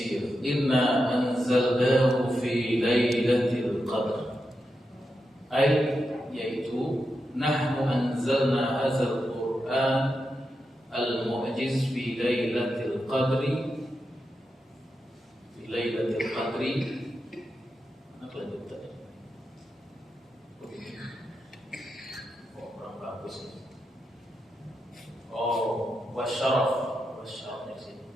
Inna anzalnahu fi lailatul qadr. Yaitu nahnu anzalna hadzal Qur'an al-mu'jiz fi lailatul qadri. Fi lailatul qadri. Mana kelanjutannya? Kurang bagus. Wasyarafnya sini.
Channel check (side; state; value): both; normal; correlation 0.87